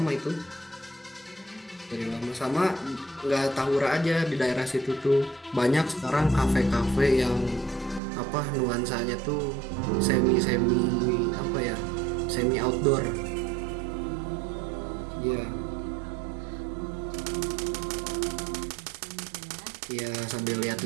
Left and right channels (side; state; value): left; drops out; at 8.0 s